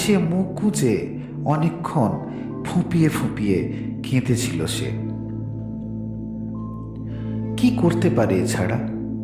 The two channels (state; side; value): identical; both; correlation 1.00